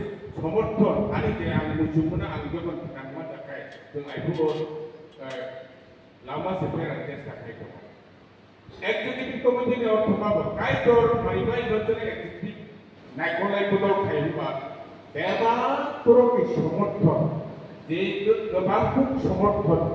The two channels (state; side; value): identical; both; correlation 1.00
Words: समर्थन आंनि जे आं मुजुमना आं गोबां नांमा थाखाय जों आइखौबो लामा सेफायनानै चेष्टा खालामो एक्टिभिटी कमिटिनि अर्थमाबो कायदर माइबाय बचने एक्टिभिटी नायख'लाय बदल खायोबा बेबा तरफनि समर्थन जे गोबां समर्थन